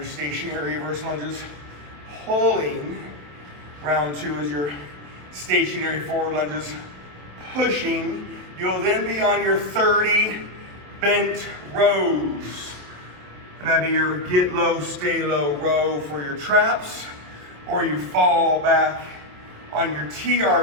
stationary reverse lunges, pulling. Round two is your stationary forward lunges, pushing. You'll then be on your 30 bent rows. And that'd be your get low, stay low row for your traps, or you fall back on your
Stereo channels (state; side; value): late; left; 27 ms